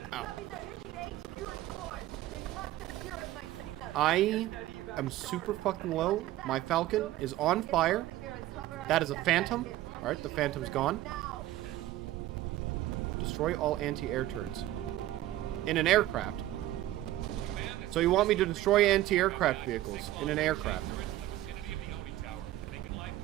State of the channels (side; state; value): left; quieter; 15.1 dB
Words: I am super fucking low. My Falcon is on fire. That is a Phantom. Alright, the Phantom's gone. Destroy all anti-air turrets. In an aircraft. So you want me to destroy anti-aircraft vehicles in an aircraft.